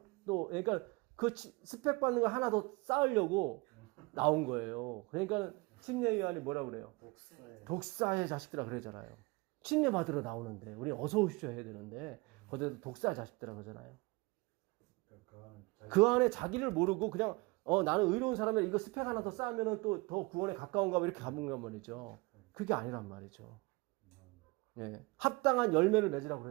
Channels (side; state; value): left; quieter; 25.1 dB